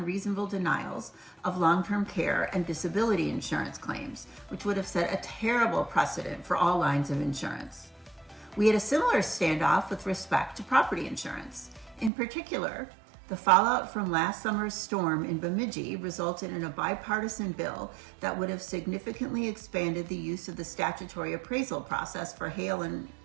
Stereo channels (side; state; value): left; drops out; at 12.1 s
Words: denials of long-term care and disability insurance claims, which would have set a terrible precedent for all lines of insurance. We had a similar standoff with respect to property insurance. In particular, the fallout from last summer's storm in Bemidji resulted in a bipartisan bill that would have significantly expanded the use of the statutory appraisal process for hail and